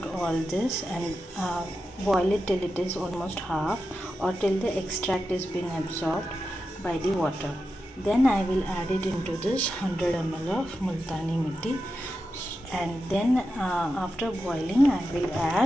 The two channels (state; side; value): normal; both; correlation 0.90